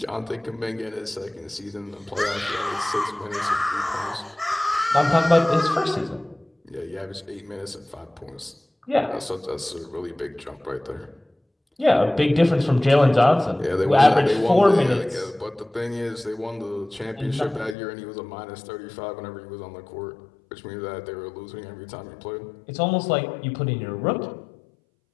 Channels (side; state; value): right; drops out; at 17.8 s